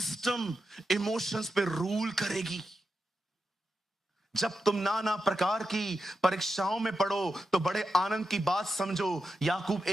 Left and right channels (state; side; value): normal; both; correlation 0.89